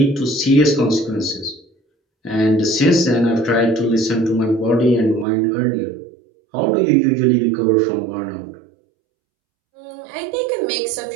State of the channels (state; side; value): drops out; left; at 5.2 s